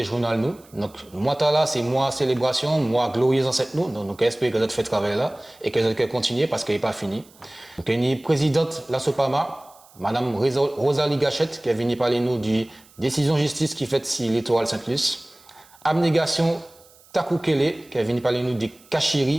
Journal nous. Donc, moi, là, c'est moi célébration, moi glorieuse ancêtre nous. Donc, j'espère que vous fait travail là et que vous allez continuer parce qu'il n'est pas fini. Donc, il y a une présidente la Sopama, Madame Rosalie Gachette, qui est venue parler nous du décision justice qui fait si l'étoile Saint-Luce. Abnégation Takoukele, qui est venu parler nous des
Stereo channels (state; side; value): noise; right; hiss, 27 dB below the sound